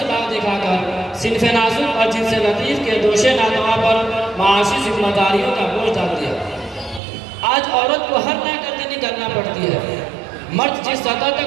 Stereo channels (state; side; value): drops out; left; at 7.0 s